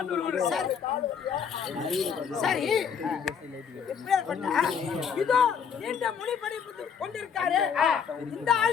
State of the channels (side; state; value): right; quieter; 7.0 dB